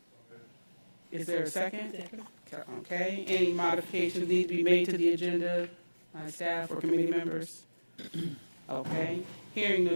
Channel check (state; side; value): inverted; both; correlation -1.00